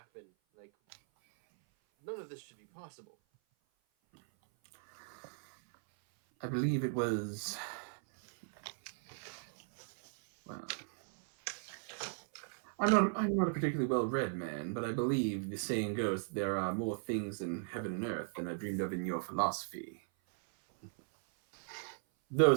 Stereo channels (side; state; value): left; silent; 53 dB below the other